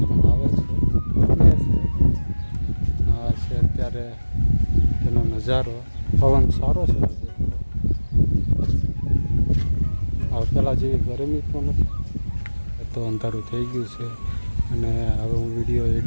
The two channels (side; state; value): both; inverted; correlation -1.00